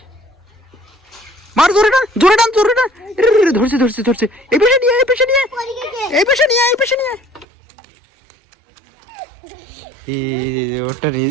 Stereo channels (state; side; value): drops out; left; at 7.5 s